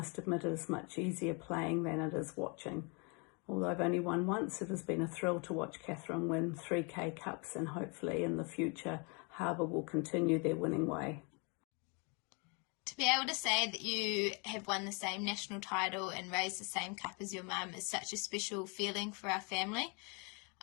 admit it is much easier playing than it is watching. Although I've only won once, it has been a thrill to watch Kathryn win 3 K-Cups, and hopefully in the future Harbour will continue their winning way. To be able to say that you have won the same national title and raised the same cup as your mum is such a special feeling for our family.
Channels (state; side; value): quieter; right; 33.0 dB